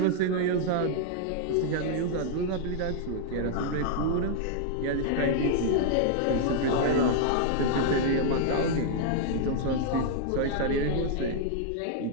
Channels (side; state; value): both; different; correlation -0.01